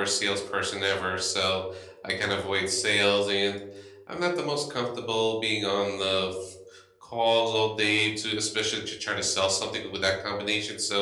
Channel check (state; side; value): identical; both; correlation 1.00